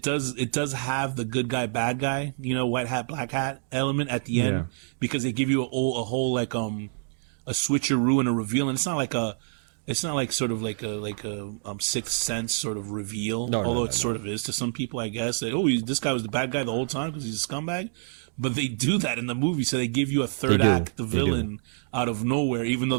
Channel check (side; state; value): left; silent; digital silence